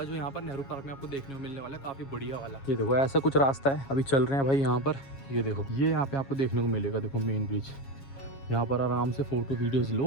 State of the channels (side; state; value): right; late; 7.3 ms